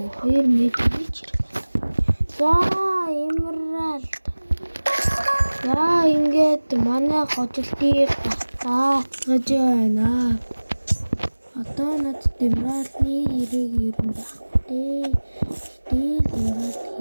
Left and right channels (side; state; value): both; inverted; correlation -1.00